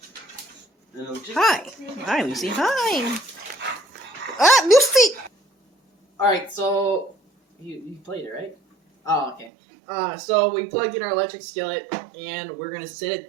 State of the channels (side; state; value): left; drops out; at 9.5 s